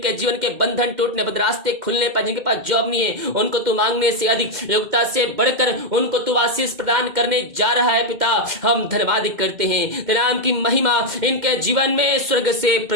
जीवन के बंधन टूटने, बदरास्ते खुलने पर, जिनके पास जॉब नहीं है उनको तू मांगने से अधिक, योग्यता से बढ़कर उनको तू आशीष प्रदान करने जा रहा है। पिता हम धन्यवाद करते हैं, तेरे नाम की महिमा इनके जीवन में स्वर्ग से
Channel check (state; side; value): late; left; 2.1 ms